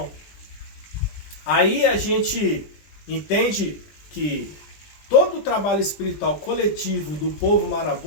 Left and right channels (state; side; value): late; right; 20 ms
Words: Aí a gente entende que todo o trabalho espiritual coletivo do povo